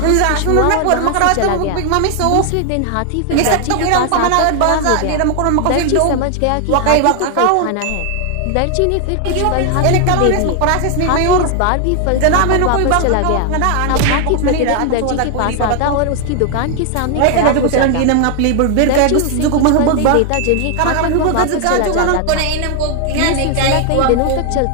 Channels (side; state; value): both; different; correlation 0.00